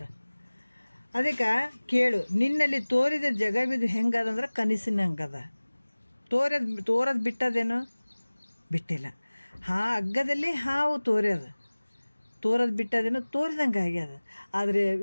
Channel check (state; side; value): inverted; both; correlation -1.00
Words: ಅದಕ್ಕೆ ಕೇಳು, ನಿನ್ನಲ್ಲಿ ತೋರಿದ ಜಗವಿದು ಹೆಂಗದಂದ್ರೆ ಕನಸಿನಂಗದ. ತೋರದು ಬಿಟ್ಟದೇನು? ಬಿಟ್ಟಿಲ್ಲ. ಹಗ್ಗದಲ್ಲಿ ಹಾವು ತೋರದು ಬಿಟ್ಟದೇನು? ತೋರಿದಂಗೆ ಆಗ್ಯದ. ಆದರೆ